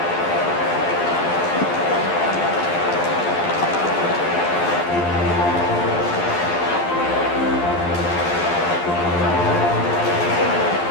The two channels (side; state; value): right; late; 11 ms